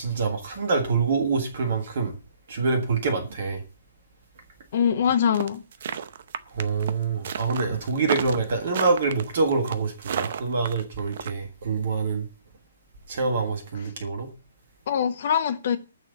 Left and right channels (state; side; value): inverted; both; correlation -0.61